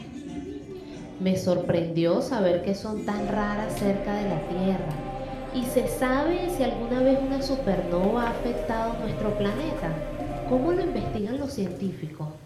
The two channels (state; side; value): identical; both; correlation 1.00